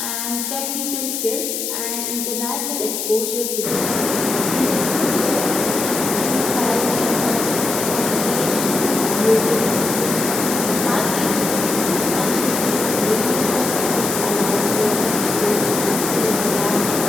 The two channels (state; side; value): noise; left; hiss, 3 dB below the sound